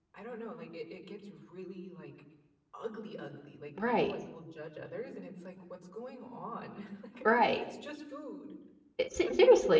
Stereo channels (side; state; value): both; identical; correlation 1.00